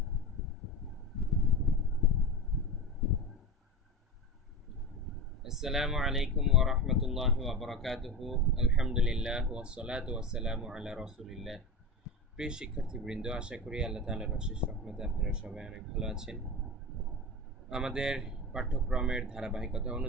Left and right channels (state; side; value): normal; both; correlation 0.25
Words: আসসালামু আলাইকুম ওয়া রাহমাতুল্লাহি ওয়া বারাকাতুহু। আলহামদুলিল্লাহ ওয়াসসালাতু ওয়াসসালামু আলা রাসূলিল্লাহ। প্রিয় শিক্ষার্থীবৃন্দ, আশা করি আল্লাহ তাআলার অশেষ রহমতে আপনারা সবাই অনেক ভালো আছেন। আমাদের পাঠ্যক্রমের ধারাবাহিকতা